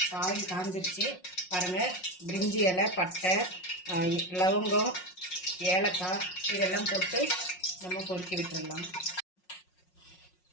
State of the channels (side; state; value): right; late; 5.5 ms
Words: ஆயில் காஞ்சிருச்சு. பாருங்க, பிரிஞ்சி இலை, பட்டை, லவங்கம், ஏலக்காய் இதெல்லாம் போட்டு நம்ம பொறுக்கி விட்டுடலாம்.